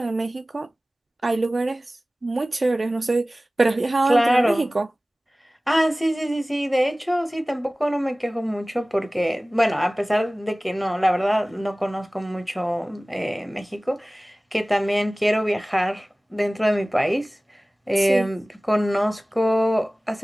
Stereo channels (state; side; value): normal; both; correlation 0.98